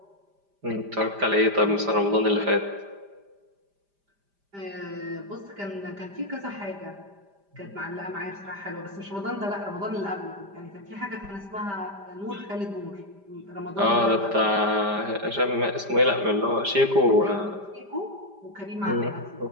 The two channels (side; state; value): left; late; 5.0 ms